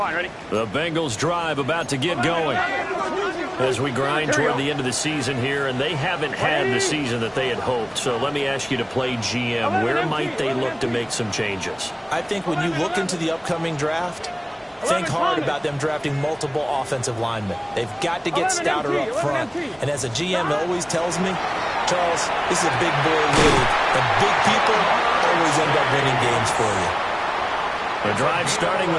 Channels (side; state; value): both; identical; correlation 1.00